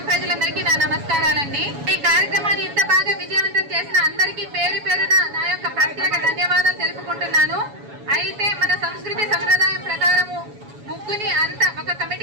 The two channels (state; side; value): late; left; 7.1 ms